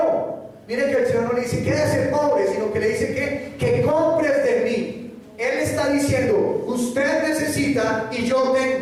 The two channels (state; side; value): identical; both; correlation 1.00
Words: Miren que el Señor no le dice quédese pobre, sino que le dice que compres de mí. Él está diciendo: usted necesita y yo